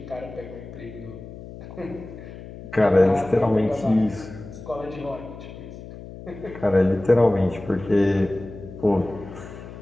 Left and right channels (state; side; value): noise; left; hum, 14 dB below the sound